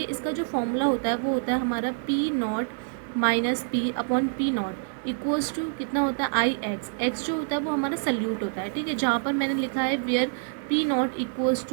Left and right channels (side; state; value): left; silent; digital silence